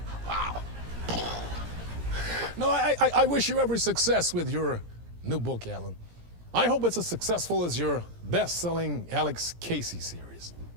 Wow. No, I wish you every success with your new book, Alan. I hope it's as successful as your best-selling Alex Casey series.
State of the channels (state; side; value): late; left; 17 ms